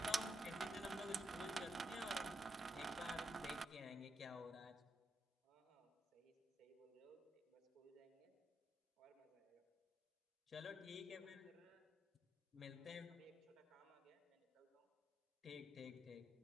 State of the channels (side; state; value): both; normal; correlation 0.82